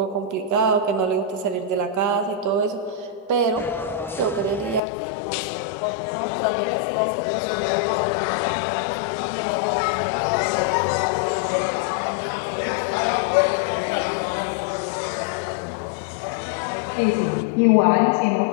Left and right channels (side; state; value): right; drops out; at 4.8 s